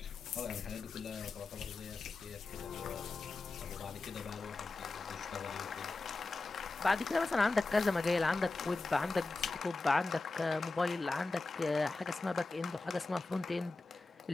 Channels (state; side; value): quieter; right; 3.5 dB